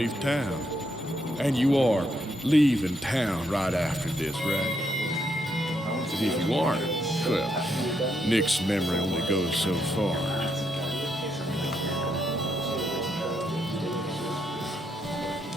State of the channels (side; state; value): both; normal; correlation 0.77